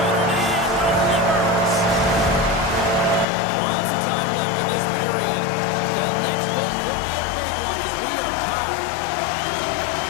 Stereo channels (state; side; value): drops out; right; at 3.2 s